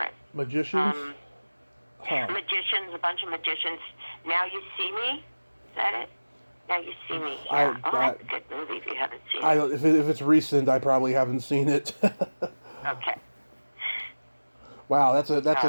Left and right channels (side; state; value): both; inverted; correlation -1.00